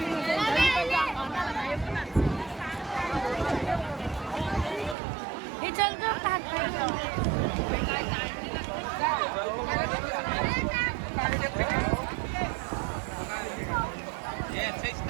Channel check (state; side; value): drops out; left; at 5.0 s